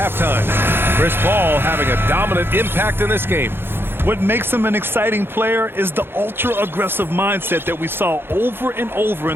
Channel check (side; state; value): left; late; 0.11 ms